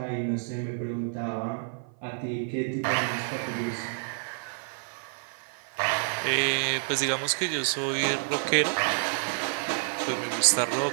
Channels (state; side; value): silent; left; 55 dB below the other